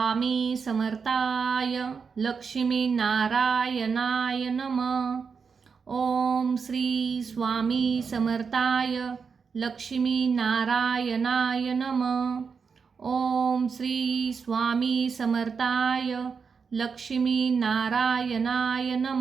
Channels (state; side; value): quieter; left; 5.7 dB